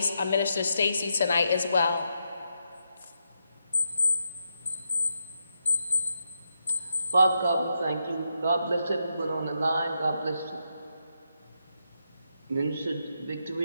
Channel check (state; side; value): inverted; both; correlation -0.83